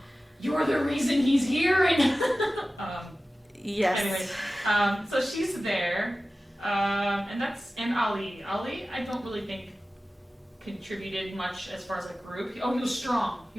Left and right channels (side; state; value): both; normal; correlation 0.96